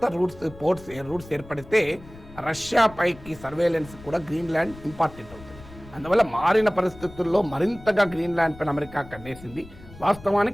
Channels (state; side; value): noise; left; rumble, 18 dB below the sound